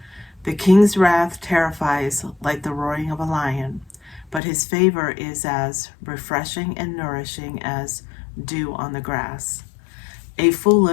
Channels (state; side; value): drops out; right; at 4.4 s